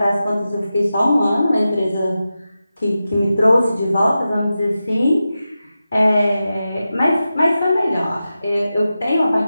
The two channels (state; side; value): inverted; both; correlation -0.92